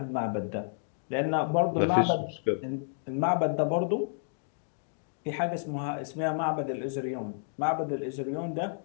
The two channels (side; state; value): right; silent; digital silence